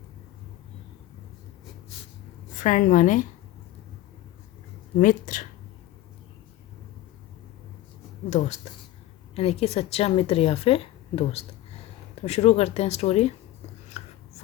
फ्रेंड माने मित्र, दोस्त, यानी कि सच्चा मित्र या फिर दोस्त। तो शुरू करते हैं story.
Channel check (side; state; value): right; quieter; 14.9 dB